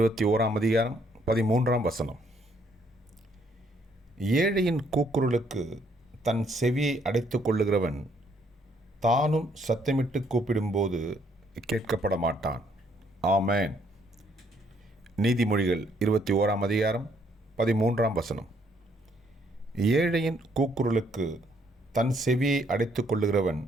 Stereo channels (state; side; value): normal; both; correlation 0.68